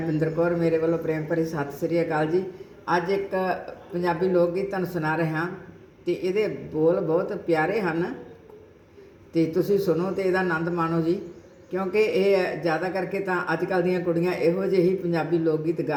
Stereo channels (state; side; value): identical; both; correlation 1.00